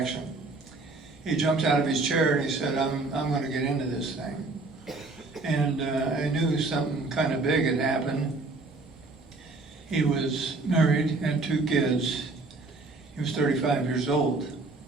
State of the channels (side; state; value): left; quieter; 3.5 dB